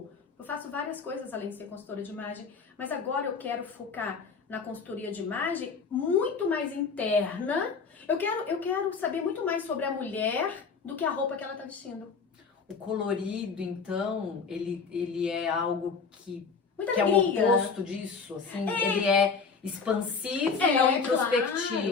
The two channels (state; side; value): quieter; right; 5.2 dB